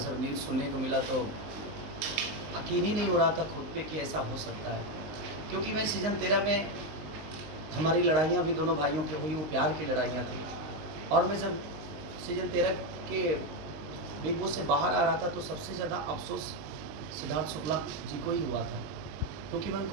न्यूज़ सुनने को मिला तो यकीन ही नहीं हो रहा था खुद पे कि ऐसा हो सकता है। क्योंकि मैं सीज़न 13 में हमारी लड़ाइयाँ भी दोनों भाइयों की हुई, वो प्यार की लड़ाइयाँ थी। और मैं जब सीज़न 13 के बिग बॉस से बाहर आ रहा था तो सबसे ज़्यादा अफ़सोस सिद्धार्थ शुक्ला जी को ही हुआ था, क्योंकि मैं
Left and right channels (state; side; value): late; left; 19 ms